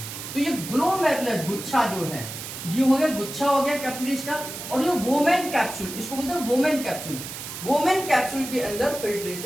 तो ये ग्लोमेरुलस गुच्छा जो है, ये हो गया गुच्छा हो गया कैपिलरीज का। और ये वोमेन कैप्सूल, इसको बोलते हैं वोमेन कैप्सूल। वोमेन कैप्सूल के अंदर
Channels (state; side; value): noise; right; hiss, 9 dB below the sound